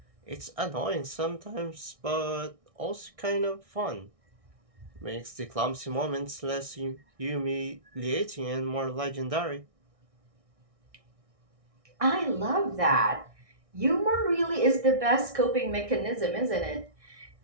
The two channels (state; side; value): late; left; 1.6 ms